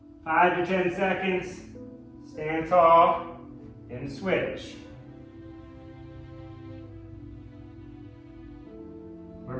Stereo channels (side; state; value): both; identical; correlation 1.00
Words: 5 to 10 seconds, stand tall, and switch. We're